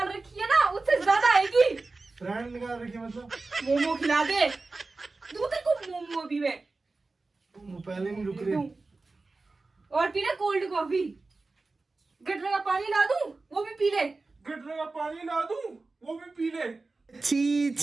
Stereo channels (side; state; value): left; quieter; 3.6 dB